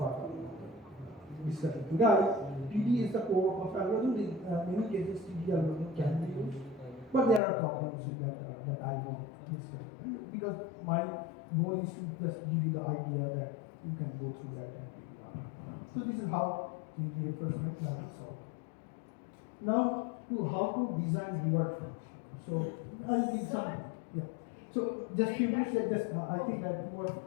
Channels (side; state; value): right; drops out; at 7.4 s